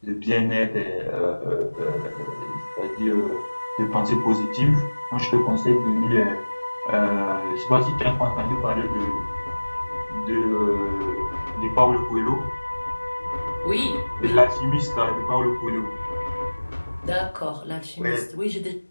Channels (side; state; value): both; inverted; correlation -1.00